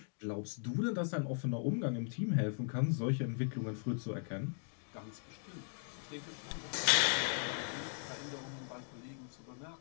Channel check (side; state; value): right; silent; digital silence